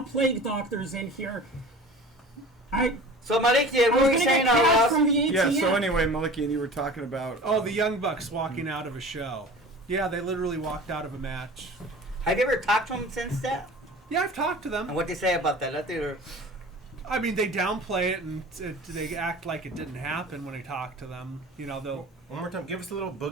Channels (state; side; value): normal; both; correlation 0.40